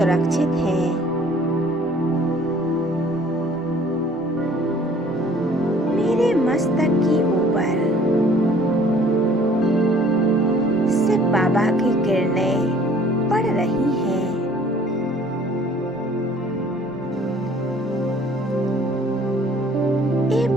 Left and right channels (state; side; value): normal; both; correlation 0.55